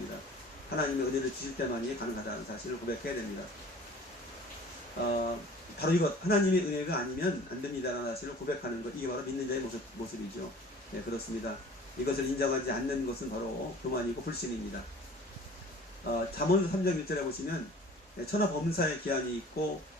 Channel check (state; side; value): normal; both; correlation 0.46